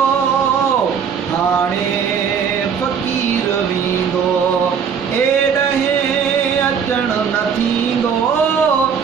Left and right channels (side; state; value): left; quieter; 6.9 dB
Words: हाणे फ़कीर वींदो एॾहे अचण न थींदो